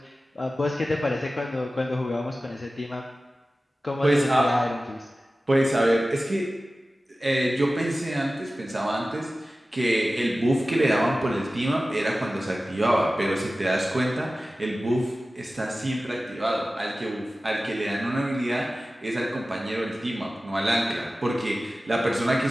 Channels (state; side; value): normal; both; correlation 0.96